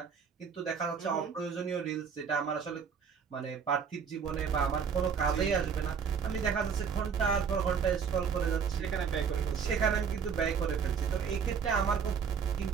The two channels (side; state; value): left; quieter; 6.5 dB